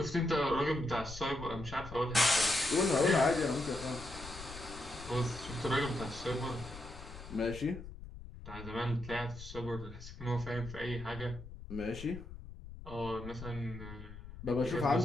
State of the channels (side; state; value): left; noise; rumble, 13 dB below the sound